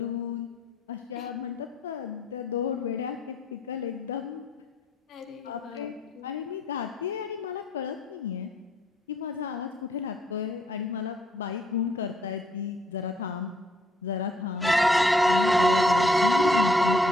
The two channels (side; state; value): both; normal; correlation 0.67